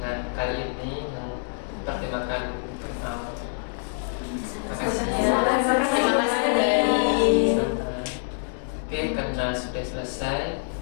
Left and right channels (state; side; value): silent; right; 61 dB below the other